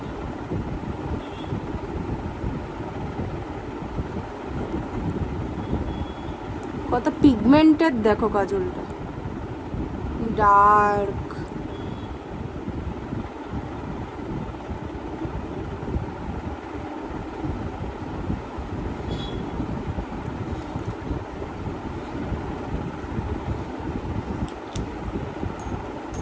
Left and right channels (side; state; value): both; identical; correlation 1.00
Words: কত পিগমেন্টেড দেখো কাজলটা, ডার্ক।